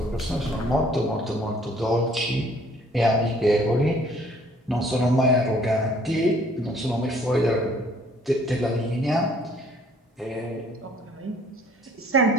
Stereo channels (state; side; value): normal; both; correlation 0.59